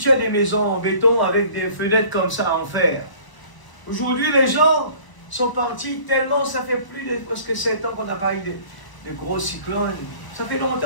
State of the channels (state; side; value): late; right; 1.0 ms